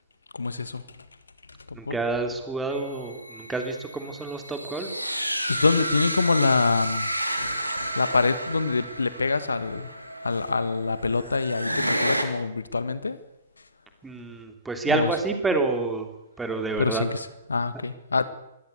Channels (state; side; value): inverted; both; correlation -0.63